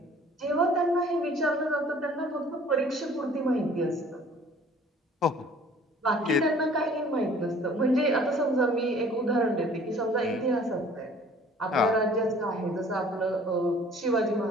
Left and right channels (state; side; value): normal; both; correlation 0.52